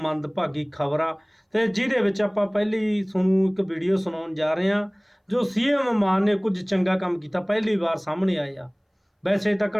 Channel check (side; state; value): both; identical; correlation 1.00